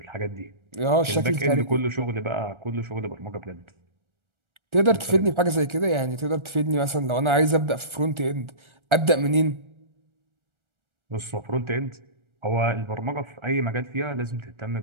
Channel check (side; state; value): left; late; 1.4 ms